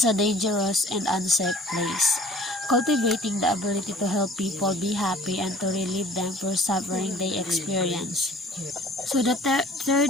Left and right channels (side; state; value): both; normal; correlation 0.50